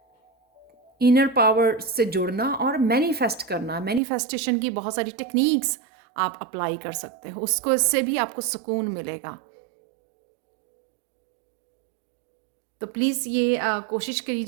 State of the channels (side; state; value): left; drops out; at 4.0 s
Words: इनर पावर से जुड़ना और मैनिफेस्ट करना। मैनिफेस्टेशन की बहुत सारी टेक्निक्स आप अप्लाई कर सकते हो, उसको इससे भी आपको सुकून मिलेगा। तो प्लीज़ ये कोशिश